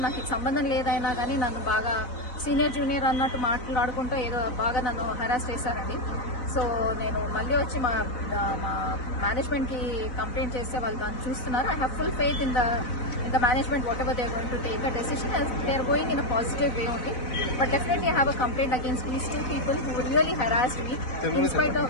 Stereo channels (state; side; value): late; right; 4.0 ms